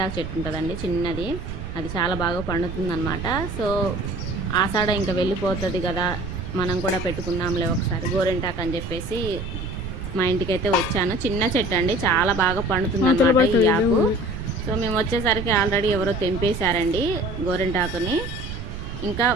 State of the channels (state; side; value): noise; right; rumble, 8 dB below the sound